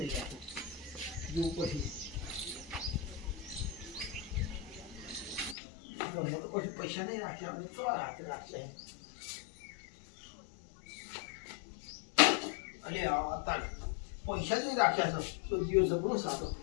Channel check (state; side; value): drops out; right; at 5.6 s